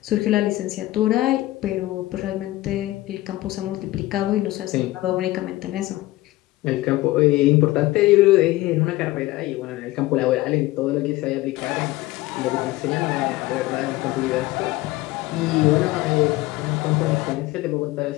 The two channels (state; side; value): quieter; right; 18.0 dB